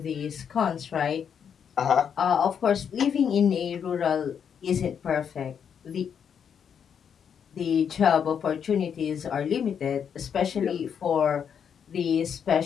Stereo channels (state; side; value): quieter; right; 7.7 dB